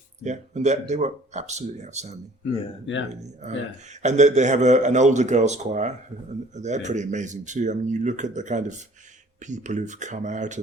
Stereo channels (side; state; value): both; normal; correlation 0.53